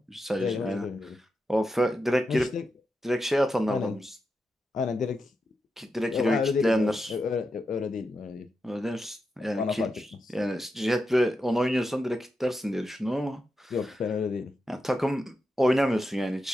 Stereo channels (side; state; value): both; normal; correlation 0.87